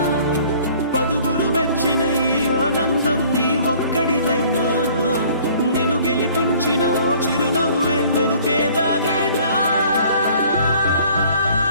పదుగురు మెచ్చిన ఈ ఆనందం నీ ఒక్కడిదైనా? నిన్ను గెలిపించిన ఓ చిరునవ్వే వెనుకే దాగేనా?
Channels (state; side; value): inverted; both; correlation -0.54